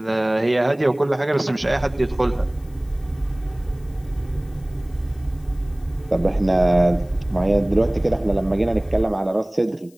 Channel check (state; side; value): noise; left; hiss, 30 dB below the sound